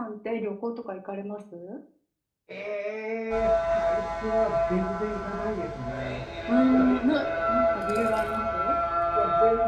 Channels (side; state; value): both; identical; correlation 1.00